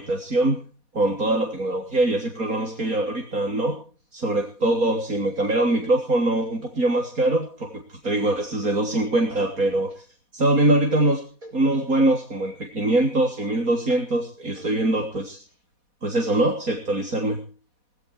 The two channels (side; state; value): left; late; 4.2 ms